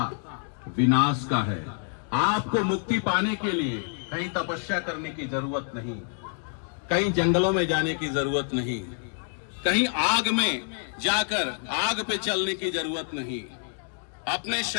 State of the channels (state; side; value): silent; right; 60 dB below the other